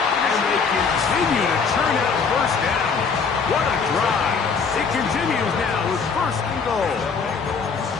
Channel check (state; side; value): quieter; right; 5.4 dB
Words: And they continue to churn out first down. What a drive. It continues now with first and goal.